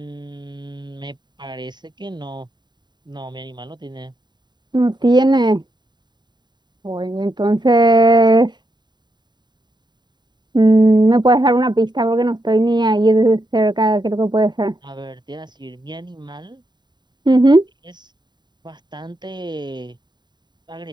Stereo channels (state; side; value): late; left; 0.21 ms